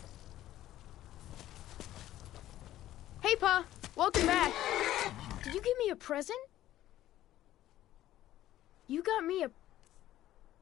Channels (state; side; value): quieter; right; 13.8 dB